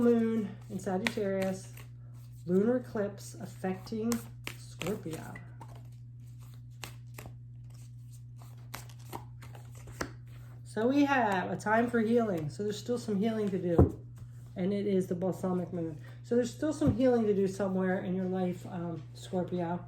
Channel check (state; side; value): identical; both; correlation 1.00